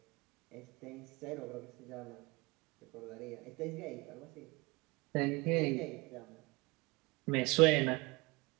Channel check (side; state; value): left; quieter; 25.2 dB